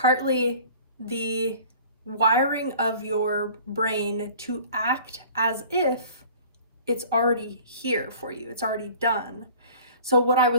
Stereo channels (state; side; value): inverted; both; correlation -0.47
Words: the wiring of your brain to act as if it's already here for you, it's already done. So what I